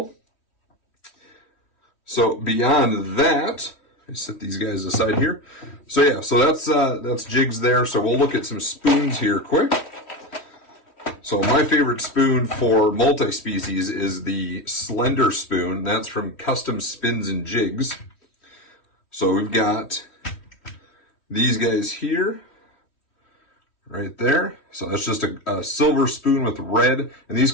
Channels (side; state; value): right; late; 3.1 ms